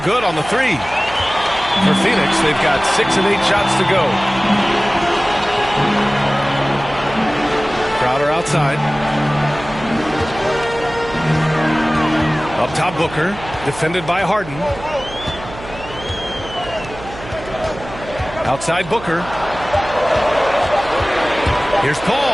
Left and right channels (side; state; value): right; noise; hum, 14 dB below the sound